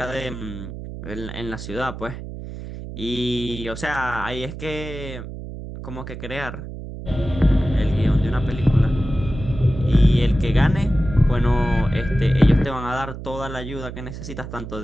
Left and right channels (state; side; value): noise; right; hum, 10 dB below the sound